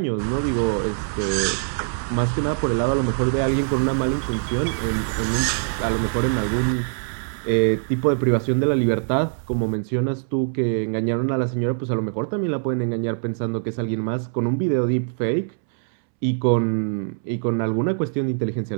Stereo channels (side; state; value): left; silent; 63 dB below the other